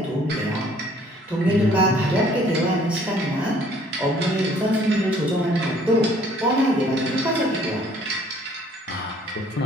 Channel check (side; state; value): both; normal; correlation 0.59